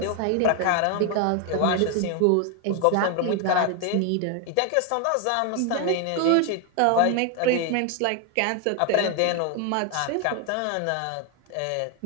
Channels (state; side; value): different; both; correlation 0.01